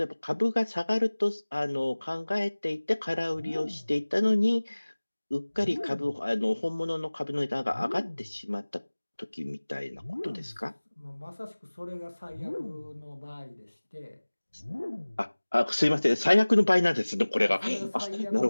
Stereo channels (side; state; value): both; inverted; correlation -1.00